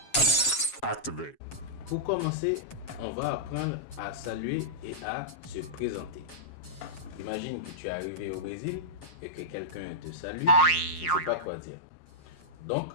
Activate. Pour commencer, on va apprendre à saluer et à se présenter. Imagine que tu es arrivé au Brésil et que quelqu'un te salue, tu ne sais pas quoi dire. Donc,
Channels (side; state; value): right; late; 7.3 ms